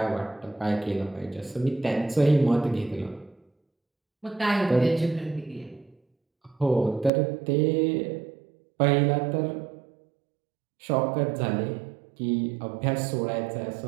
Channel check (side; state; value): left; drops out; at 7.1 s